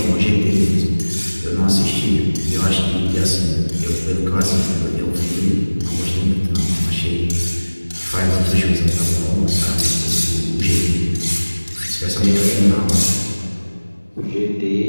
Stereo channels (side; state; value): both; inverted; correlation -1.00